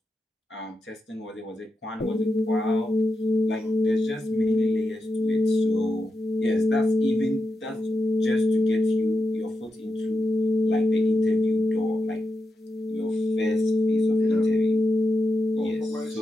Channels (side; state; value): both; normal; correlation 0.88